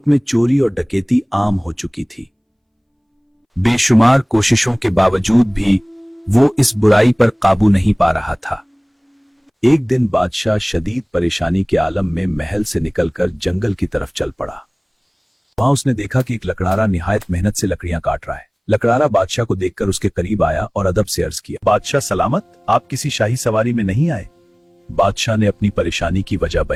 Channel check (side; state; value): both; identical; correlation 1.00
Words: में चोरी और डकैती आम हो चुकी थी। बेशुमार कोशिशों के बावजूद भी वो इस बुराई पर काबू नहीं पा रहा था। एक दिन बादशाह शदीद परेशानी के आलम में महल से निकलकर जंगल की तरफ चल पड़ा। वहां उसने देखा कि एक लकड़हारा निहायत मेहनत से लकड़ियां काट रहा है। लकड़हारा बादशाह को देखकर उसके करीब आया और अदब से अर्ज किया, बादशाह सलामत, आप किसी शाही सवारी में नहीं आए? बादशाह ने अपनी परेशानी की वजह